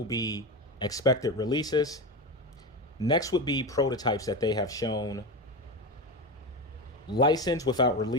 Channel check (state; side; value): normal; both; correlation 0.20